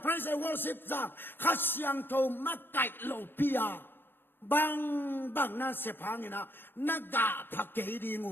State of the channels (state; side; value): late; right; 0.10 ms